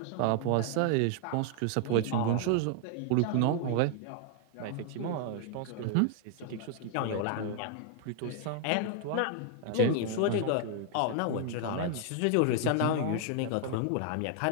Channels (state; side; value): different; both; correlation 0.00